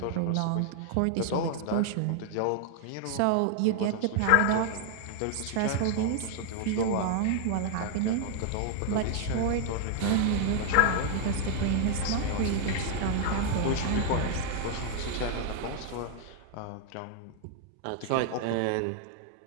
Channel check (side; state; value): both; different; correlation 0.00